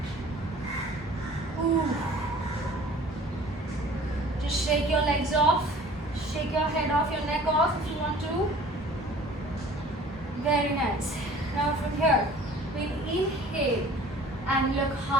Ooh. Just shake your legs off. Shake your head off, your neck off if you want to. Very nice. Now from here, we'll inhale and look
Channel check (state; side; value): normal; both; correlation 0.48